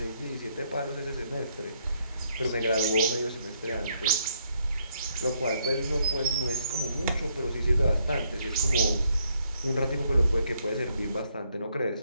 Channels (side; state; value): both; inverted; correlation -0.73